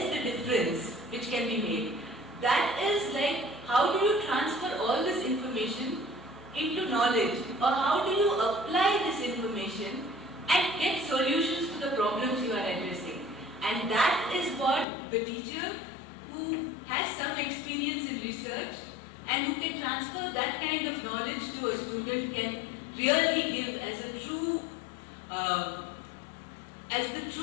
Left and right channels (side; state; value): right; drops out; at 14.9 s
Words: the difference which can be made? That is like, how do you transfer all this information into knowledge, or how do you apply this information and get solutions to the problems you are addressing? And that is what the teacher who has some experience in research and who can transfer that kind of knowledge to a student can really give as a true, as the